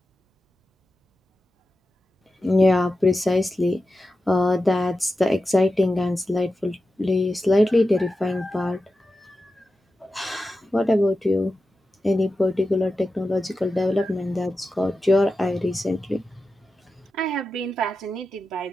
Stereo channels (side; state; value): both; normal; correlation 0.91